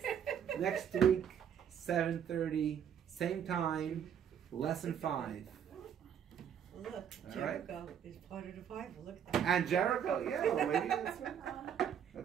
Next week, 7:30, same time, lesson 5. Look, All Jericho right. is part of the Bible. Look at that. And Jericho, yeah, well, maybe that's right.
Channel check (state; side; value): quieter; left; 8.6 dB